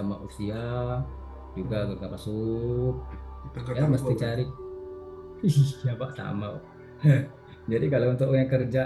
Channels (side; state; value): both; identical; correlation 1.00